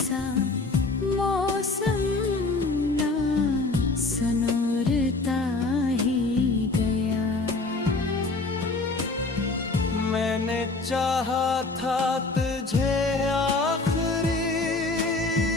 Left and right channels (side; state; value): right; quieter; 3.5 dB